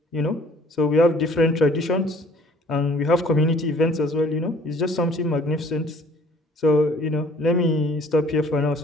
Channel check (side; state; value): both; normal; correlation 0.54